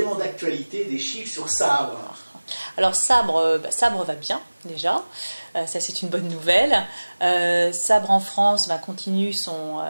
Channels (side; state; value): both; inverted; correlation -1.00